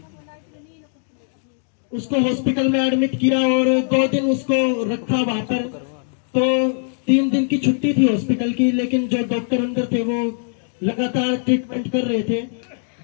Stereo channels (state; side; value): silent; right; digital silence